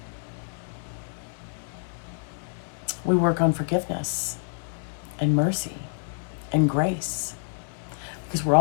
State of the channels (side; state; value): right; silent; 60 dB below the other